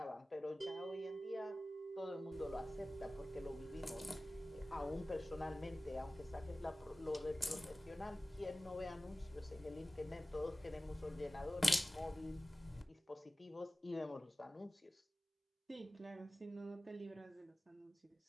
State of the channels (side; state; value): both; normal; correlation 0.96